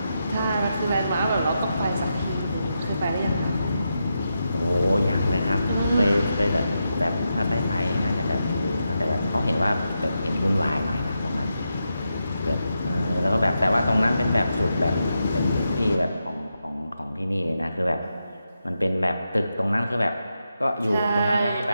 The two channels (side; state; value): both; inverted; correlation -0.86